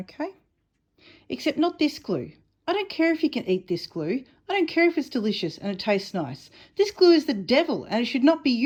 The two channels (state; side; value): identical; both; correlation 1.00